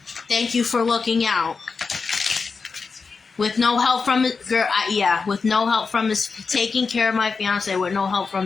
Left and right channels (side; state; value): right; quieter; 4.8 dB